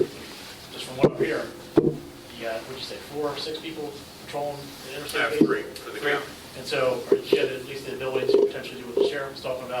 just from what I'm hearing, you got, what'd you say, 4 or 6 people patrolling the interstate? I have base? 3 for the county. And so, or you had at least the ability to potentially do what the sheriff was talking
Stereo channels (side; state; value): both; identical; correlation 1.00